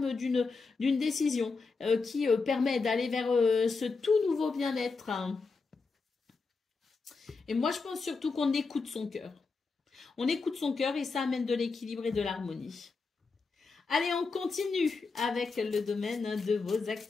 d'une décision qui permet d'aller vers ce tout nouveau bien-être, hein. Et moi, je pense surtout qu'on écoute son cœur. On écoute son cœur et ça amène de l'équilibre et de l'harmonie. Allez, on continue avec le domaine de vos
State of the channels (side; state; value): right; quieter; 4.4 dB